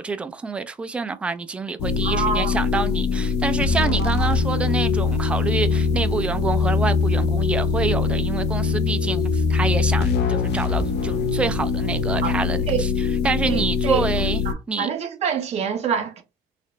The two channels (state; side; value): normal; both; correlation 0.45